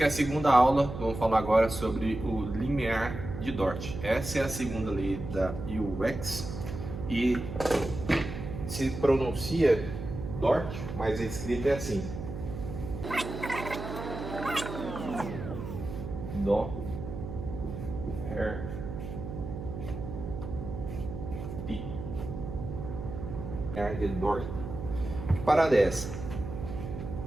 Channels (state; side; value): noise; right; hum, 8 dB below the sound